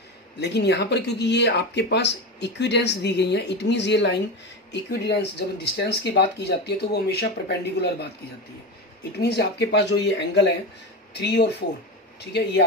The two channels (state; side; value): normal; both; correlation 0.20